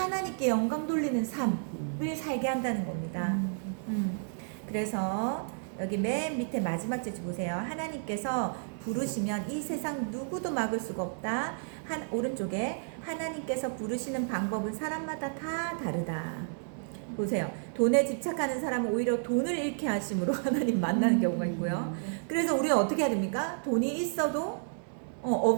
영광 돌리는 삶을 살게 한다는 겁니다. 그래서 여기 맨 밑에 마지막 절 보세요. 하나님께서 부르시면 이 세상 누구도 막을 수가 없다. 오른쪽에 하나님께서 부르시는 방법은 사람마다 다 다르다. 보세요. 돈에 집착하는 사람은 오히려 돈을 잃게 하심으로 하나님 만나는 경우가 있고요. 그래서 우리는 어떻게 해야 됩니까? 돈이 있어도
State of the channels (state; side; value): silent; left; 57 dB below the other